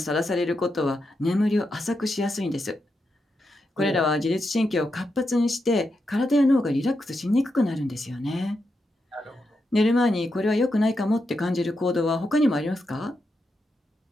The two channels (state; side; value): normal; both; correlation 0.85